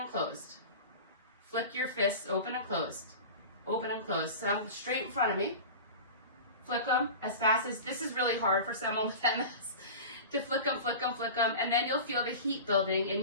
closed. Flick your fists open and closed, open and closed. So I'm straight in front of me. Flick them as fast as, this is really hard for someone with MS, to flick them, flick them, flick them, and then you'll feel the heat building in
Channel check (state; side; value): inverted; both; correlation -0.32